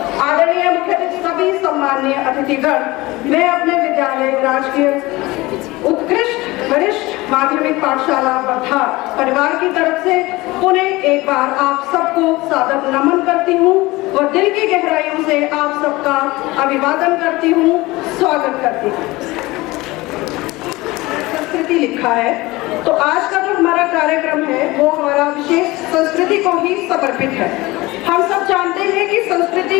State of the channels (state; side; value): quieter; right; 20.7 dB